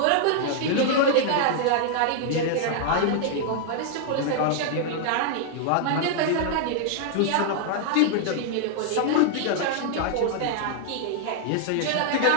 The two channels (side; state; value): both; different; correlation 0.00